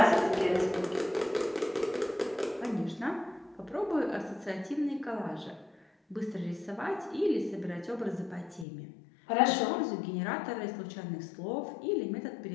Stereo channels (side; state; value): right; drops out; at 8.7 s